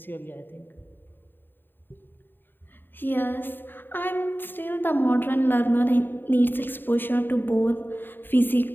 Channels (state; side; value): late; right; 0.095 ms